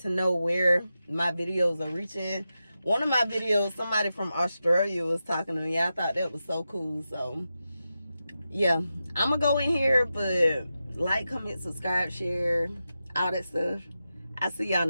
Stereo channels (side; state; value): both; inverted; correlation -0.90